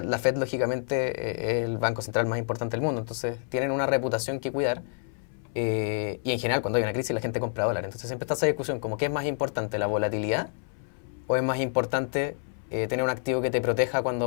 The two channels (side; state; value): right; silent; 59 dB below the other